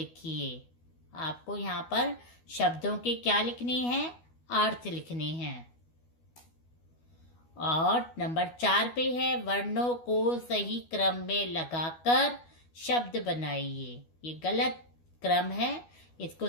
आपको यहाँ पर शब्दों के क्या लिखने हैं, अर्थ लिखने हैं। और नंबर 4 पे है वर्णों को सही क्रम में लगाकर शब्द बनाइए। ये गलत क्रम है, इसको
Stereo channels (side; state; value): right; late; 12 ms